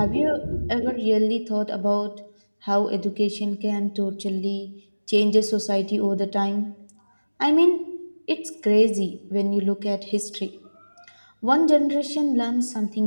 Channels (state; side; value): inverted; both; correlation -1.00